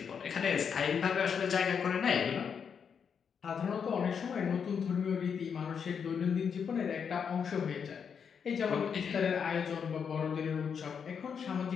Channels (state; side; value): quieter; right; 6.9 dB